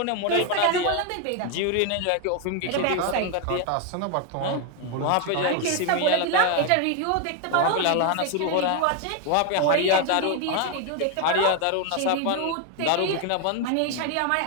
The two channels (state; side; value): different; both; correlation 0.01